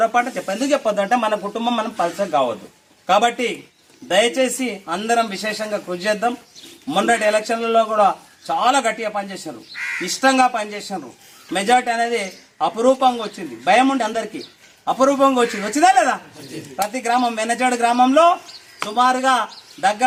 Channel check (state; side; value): identical; both; correlation 1.00